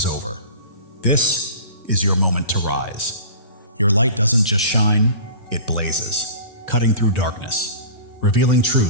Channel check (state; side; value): inverted; both; correlation -0.38